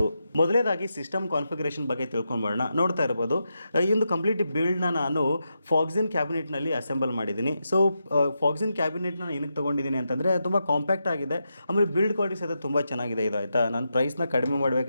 ಮೊದಲೇದಾಗಿ ಸಿಸ್ಟಮ್ ಕಾನ್ಫಿಗರೇಷನ್ ಬಗ್ಗೆ ತಿಳ್ಕೊಂಡ್ಬರೋಣ. ನೋಡ್ತಾ ಇರ್ಬೋದು, ಈ ಒಂದು ಕಂಪ್ಲೀಟ್ ಬಿಲ್ಡ್ನ ನಾನು ಫಾಕ್ಸಿನ್ ಕ್ಯಾಬಿನೆಟ್ನಲ್ಲಿ ಅಸೆಂಬಲ್ ಮಾಡಿದ್ದೀನಿ. ಸೊ ಫಾಕ್ಸಿನ್ ಕ್ಯಾಬಿನೆಟ್ನ ಏನಕ್ಕೆ ತೊಗೊಂಡಿದ್ದೀನಿ ಅಂತಂದರೆ ತುಂಬ ಕಾಂಪ್ಯಾಕ್ಟ್ ಆಗಿದೆ, ಆಮೇಲೆ ಬಿಲ್ಡ್ ಕ್ವಾಲಿಟಿ ಸಹಿತ ತುಂಬ ಚೆನ್ನಾಗಿದೆ. ಇದು ಆಯಿತಾ, ನಾನು ಪ್ರೈಸ್ನ ಕಡಿಮೆ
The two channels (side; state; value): both; inverted; correlation -0.86